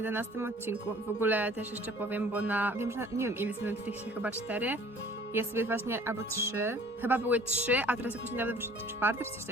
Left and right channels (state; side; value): normal; both; correlation 0.51